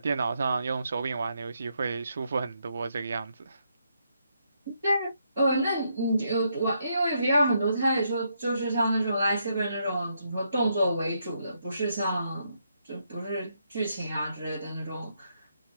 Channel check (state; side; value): inverted; both; correlation -0.77